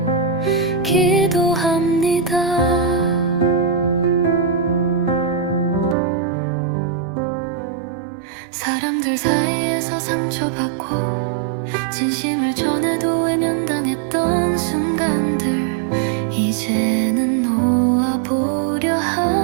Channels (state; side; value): drops out; left; at 6.0 s